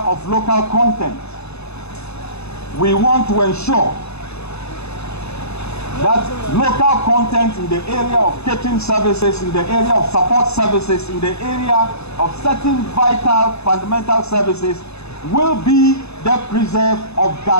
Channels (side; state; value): right; late; 0.80 ms